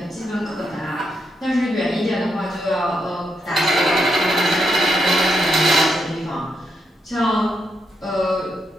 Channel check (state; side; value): normal; both; correlation 0.81